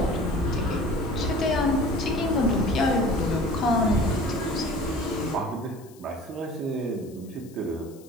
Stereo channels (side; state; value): left; noise; hiss, 26 dB below the sound